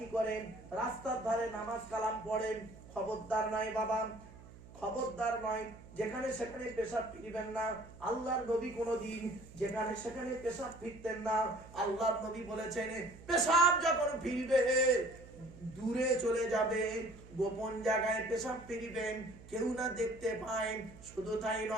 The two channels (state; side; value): noise; right; hum, 19 dB below the sound